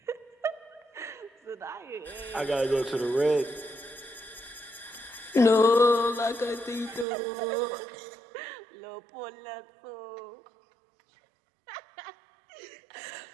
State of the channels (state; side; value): drops out; left; at 7.1 s